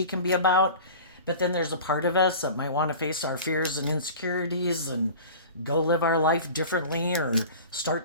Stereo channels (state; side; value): inverted; both; correlation -0.38